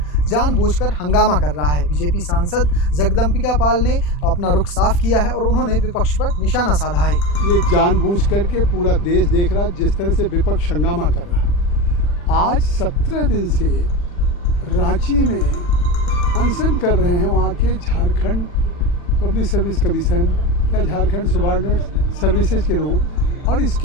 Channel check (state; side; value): late; right; 40 ms